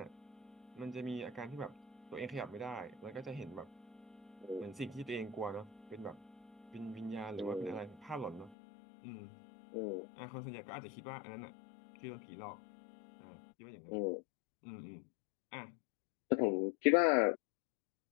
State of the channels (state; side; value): drops out; right; at 8.6 s